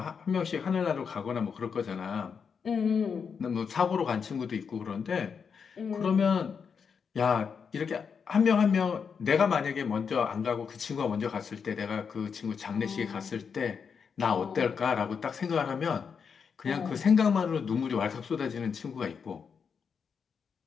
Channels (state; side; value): quieter; right; 6.3 dB